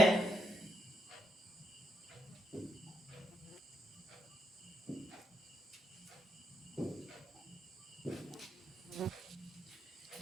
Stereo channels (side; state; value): both; normal; correlation 0.79